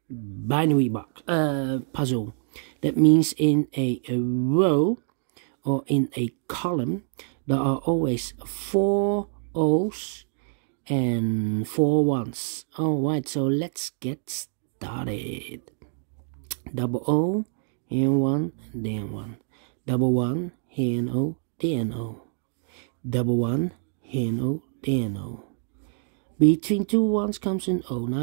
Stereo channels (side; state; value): left; silent; digital silence